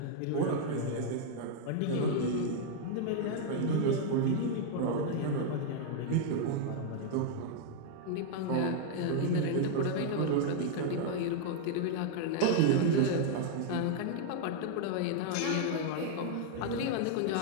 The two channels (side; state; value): both; different; correlation -0.01